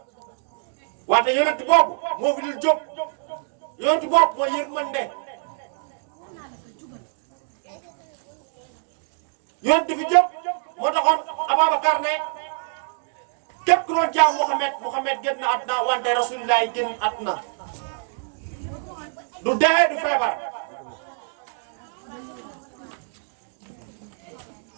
wante yónent boobu moo fi dul jóg yónent boobu mooy yërmande yónent fi jóg moo taxoon Ababacar ne képp ku doon jaam Muhammad génn na àdduna wante Rasulullah génn àdduna du dee du feebar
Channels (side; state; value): left; silent; digital silence